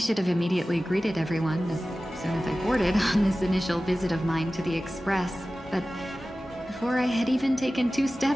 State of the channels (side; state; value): both; normal; correlation 0.96